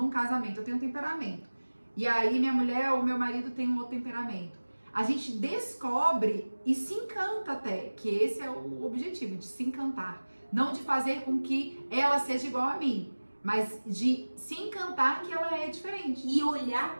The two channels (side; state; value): both; inverted; correlation -1.00